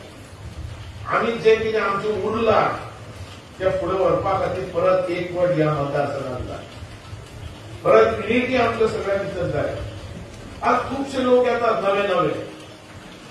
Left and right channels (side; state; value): both; identical; correlation 1.00